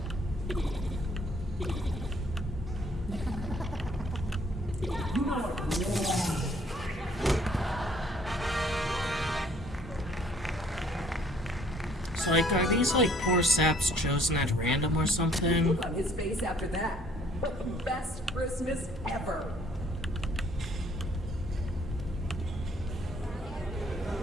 So, like, are these, like, poor saps chosen at random or something? Look on his face after that. Best Christmas ever.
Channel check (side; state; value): both; normal; correlation 0.61